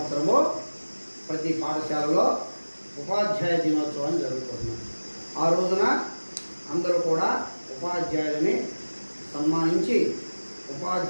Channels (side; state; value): both; inverted; correlation -1.00